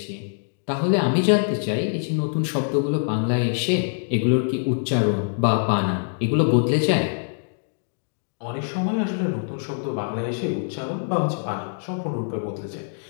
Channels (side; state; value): right; silent; digital silence